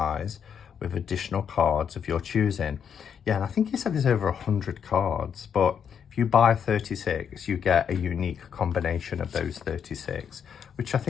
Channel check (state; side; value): quieter; right; 7.7 dB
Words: with additional cards of your choosing. Yeah, and I think he said there's over 100 cards, but if you buy 36, you get a unique combination of those 36, which I